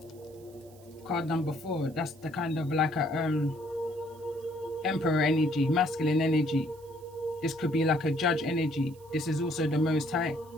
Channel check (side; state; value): right; noise; hiss, 27 dB below the sound